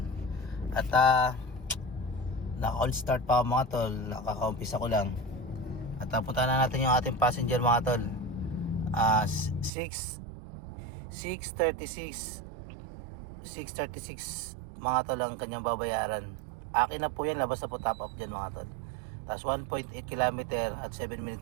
At naka-all start pa mga tol, nakaka-umpisa ko lang. At punta na natin yung ating passenger mga tol. 636 mga tol ang kanyang babayaran. Akin na po yan, labas na po top up dyan mga tol. Tapos 1.8 km at 7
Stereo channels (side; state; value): left; drops out; at 9.7 s